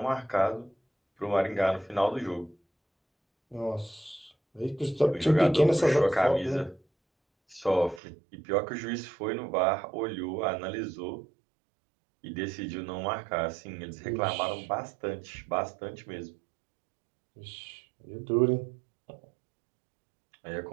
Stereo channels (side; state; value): left; drops out; at 8.0 s